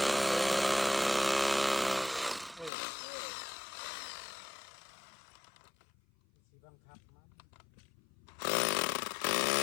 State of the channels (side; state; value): right; drops out; at 2.7 s